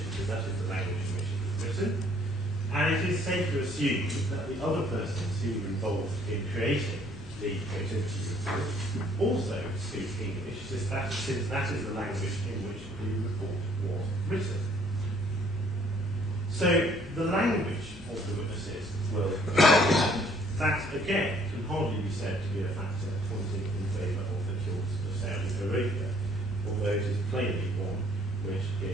because that is the language in which it was written. And it is safe to assume that the other persons who were involved in creating the Protiviti report also speak English, since that is the language in which the report was written. So the language of the witnesses will that again can hardly be said to be a factor pointing in favour of the cause of Saudi Arabia, although it is plainly one which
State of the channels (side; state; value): both; normal; correlation 0.61